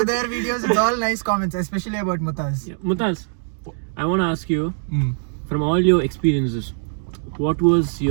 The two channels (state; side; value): silent; left; digital silence